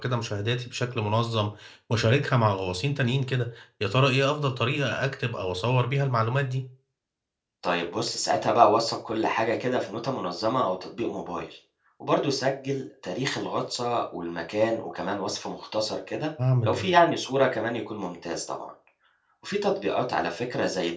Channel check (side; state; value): both; identical; correlation 1.00